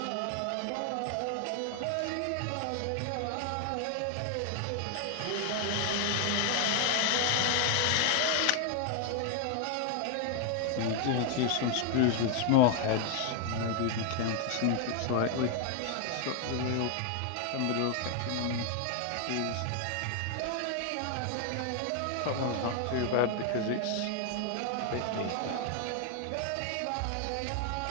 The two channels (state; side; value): different; both; correlation 0.00